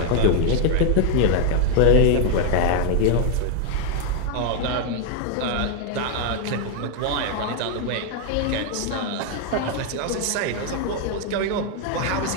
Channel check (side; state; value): both; different; correlation 0.01